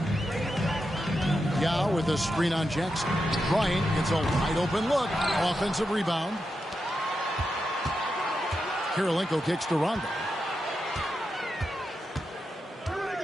Yao with a screen on Jackson. Bryant gets a wide open look. Offensive rebound. Kirilenko kicks to Rondo.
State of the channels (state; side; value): normal; both; correlation 0.87